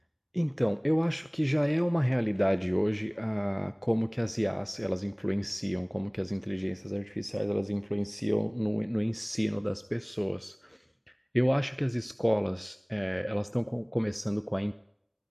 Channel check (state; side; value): identical; both; correlation 1.00